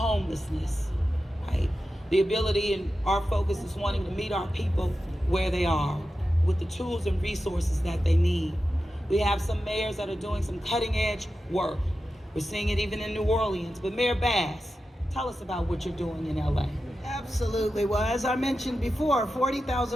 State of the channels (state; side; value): normal; both; correlation 0.92